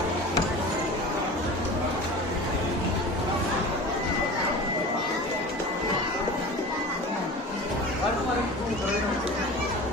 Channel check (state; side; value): normal; both; correlation 0.35